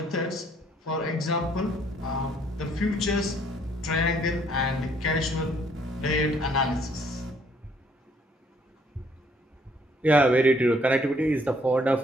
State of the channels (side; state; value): both; normal; correlation 0.65